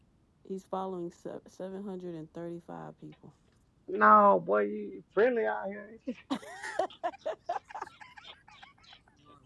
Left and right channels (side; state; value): both; identical; correlation 1.00